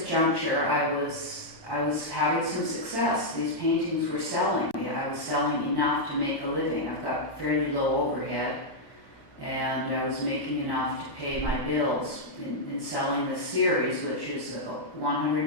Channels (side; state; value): right; late; 1.1 ms